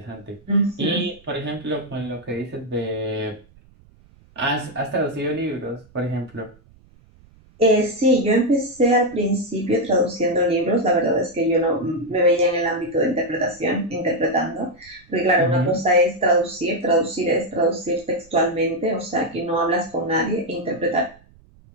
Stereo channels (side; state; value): right; noise; rumble, 28 dB below the sound